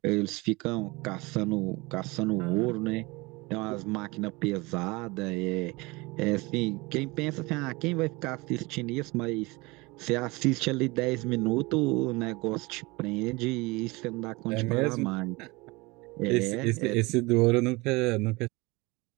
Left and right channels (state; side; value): quieter; left; 24.1 dB